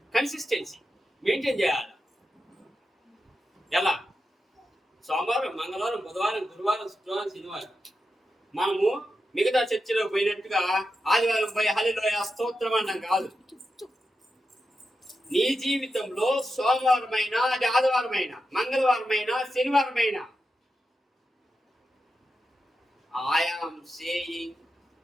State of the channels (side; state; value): both; normal; correlation 0.89